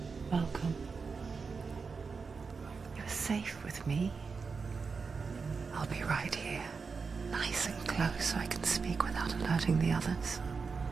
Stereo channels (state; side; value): quieter; left; 5.0 dB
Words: Welcome. You're safe with me. I'll be right here, nice and close so I can speak without alerting the others.